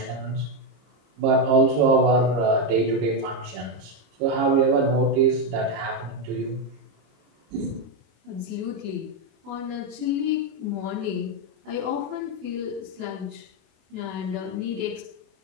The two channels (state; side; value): late; left; 26 ms